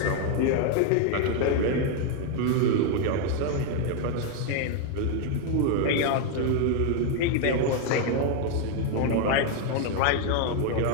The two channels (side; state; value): both; different; correlation 0.01